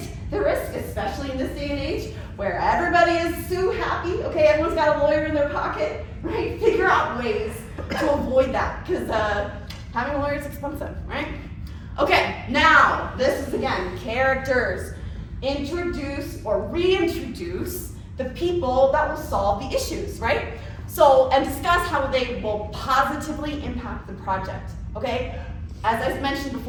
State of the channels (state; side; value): identical; both; correlation 1.00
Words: the risk, especially in this day and age where everybody is so happy, okay? Everyone's got a lawyer in their pocket, right? Figure out ways to avoid that, because having a lawyer is expensive, right? Okay, now this is again characters. Introduce or reintroduce the people that will solve the issues, right? So, and discuss how they will positively impact the project, okay? As I mentioned